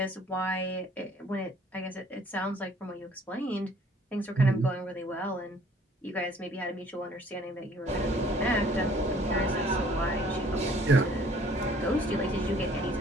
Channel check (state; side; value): normal; both; correlation 0.57